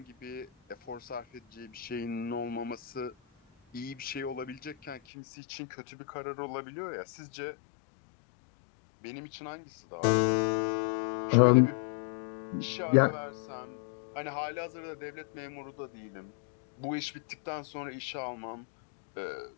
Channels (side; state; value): right; drops out; at 5.0 s